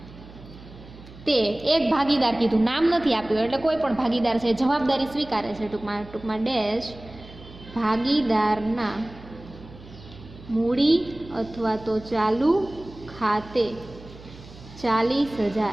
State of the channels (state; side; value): noise; right; hum, 19 dB below the sound